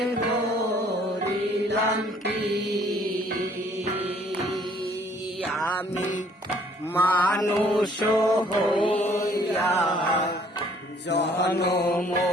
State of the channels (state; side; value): normal; both; correlation 0.60